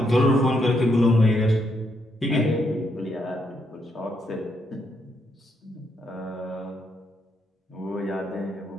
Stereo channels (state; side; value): normal; both; correlation 0.77